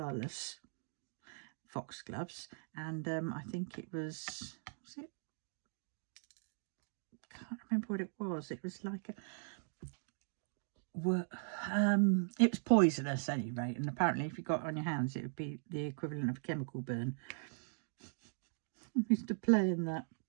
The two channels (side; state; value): left; silent; digital silence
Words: foxgloves. And I think it was it? I can't remember what it was. It was like it was poisonous at any rate. And apparently if you got it on your hands, it would be the equivalent of a chemical burn. I used to play in that.